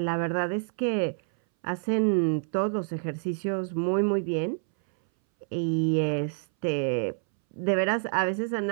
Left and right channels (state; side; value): silent; left; 60 dB below the other